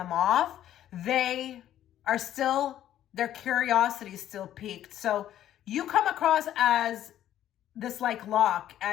off, they are still, their curiosity is still piqued. So you come across as this like lock,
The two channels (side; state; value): right; quieter; 11.8 dB